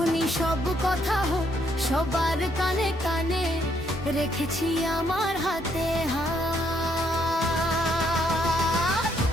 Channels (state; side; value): normal; both; correlation 0.72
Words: সব কথা হোক সবার কানে কানে, রেখেছি আমার হাতে হাত।